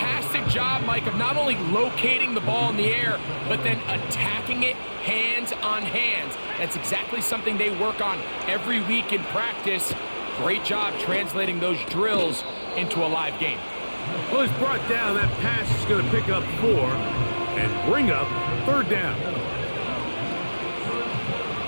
job, Mike, of not only locating the ball in the air, but then attacking it hands on hands. That's exactly something they work on every week in practice. Great job translating those drills into a live game. Well, it's brought down. That pass is going to pick up 4 and bring up 3rd down.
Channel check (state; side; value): inverted; both; correlation -1.00